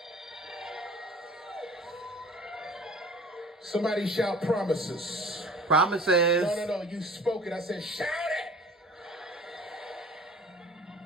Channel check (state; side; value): normal; both; correlation 0.45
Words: Somebody shout promises. Promises. No, you spoke it. I said shout it.